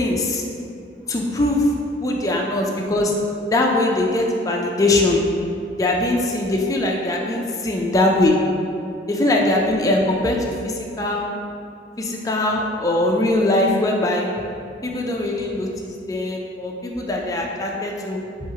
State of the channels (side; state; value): both; normal; correlation 0.49